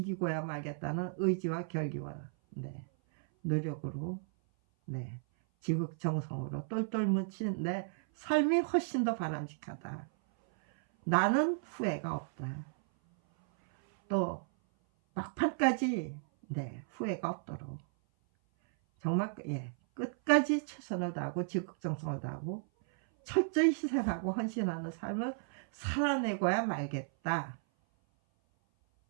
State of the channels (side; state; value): left; silent; 55 dB below the other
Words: 말겠다는 의지와 결기와 노력으로 지극정성으로 똘똘 뭉친 내 삶이 훨씬 더 바람직하다. 나는 후회가 없다. 또 막판까지 후회가 없도록 정말 끝까지 최선을 다하고 지극정성을 다하고 철저히 희생하고 헌신하는 삶을 살아내고야 말겠다.